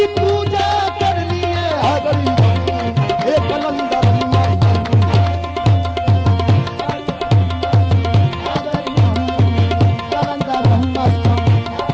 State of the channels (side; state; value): both; identical; correlation 1.00